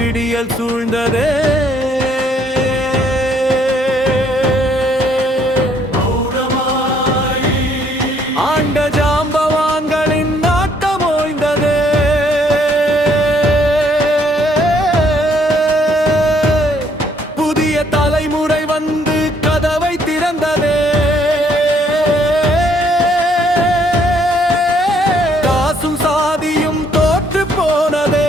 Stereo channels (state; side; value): normal; both; correlation 0.66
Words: சூழ்ந்ததே. ஆண்ட ஜாம்பவான்களின் நாட்டம் ஓய்ந்ததே. புதிய தலைமுறை வந்து கதவை திறந்ததே. காசும் சாதியும் தோற்று போனதே.